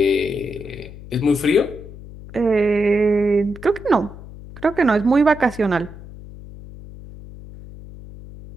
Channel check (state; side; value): noise; left; hum, 16 dB below the sound